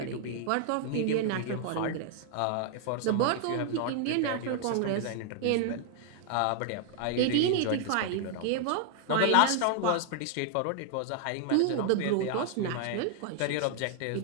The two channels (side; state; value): both; different; correlation 0.00